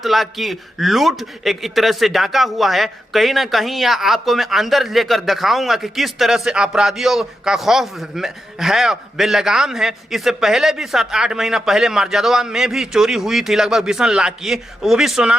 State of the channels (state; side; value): normal; both; correlation 0.87